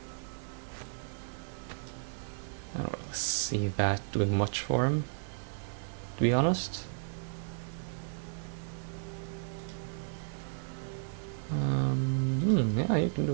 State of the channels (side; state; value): left; silent; digital silence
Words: I don't really see that doing much for him, to be honest. Yeah, you can do